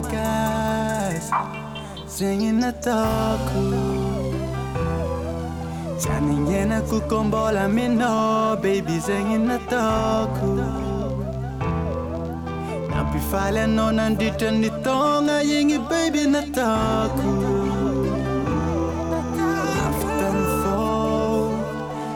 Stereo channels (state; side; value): identical; both; correlation 1.00